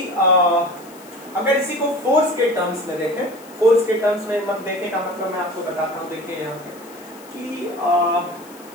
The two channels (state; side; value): noise; left; hiss, 23 dB below the sound